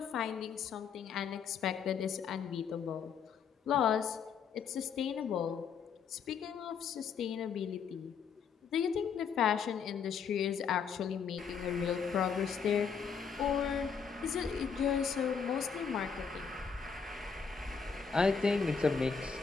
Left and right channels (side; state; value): right; quieter; 6.3 dB